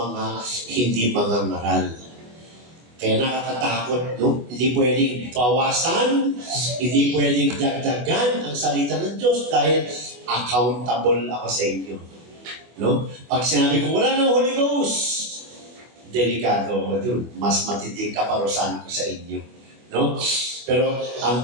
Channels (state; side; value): late; left; 24 ms